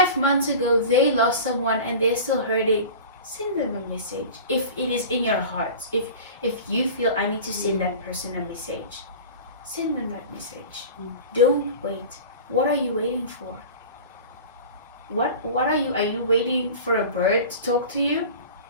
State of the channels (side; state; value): both; inverted; correlation -0.36